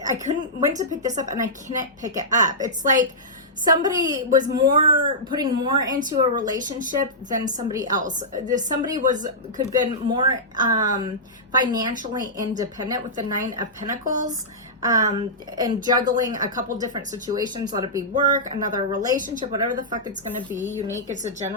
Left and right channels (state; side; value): normal; both; correlation -0.14